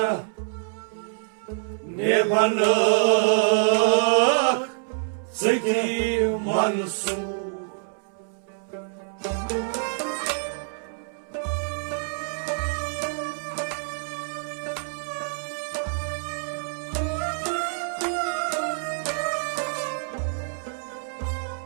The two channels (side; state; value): left; silent; 61 dB below the other